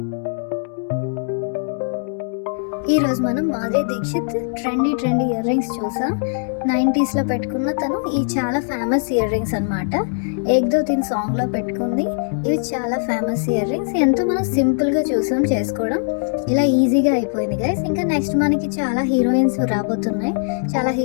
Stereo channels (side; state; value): right; silent; digital silence